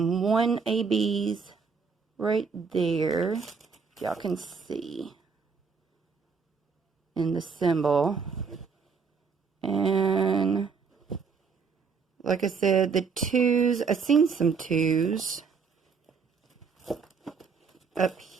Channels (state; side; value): quieter; left; 5.4 dB